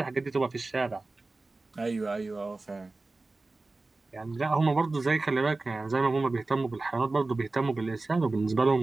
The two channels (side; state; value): left; quieter; 3.3 dB